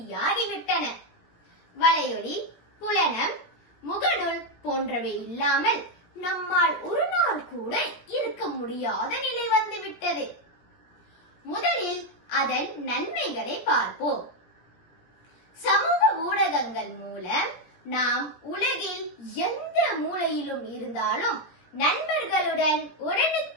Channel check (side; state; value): right; late; 17 ms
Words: வலையொலி, புலனம், முகநூல் போன்றவை இல்லாமல் நம்மால் ஒரு நாள் கூட இருக்க முடியாத நிலை வந்துவிட்டது. முதலில் அதன் நன்மைகளை பார்ப்போம். சமூக ஊடகங்கள் மூலம் நாம் உலகில் எந்த மூலையிலும் இருந்தாலும் நண்பர்களுடன்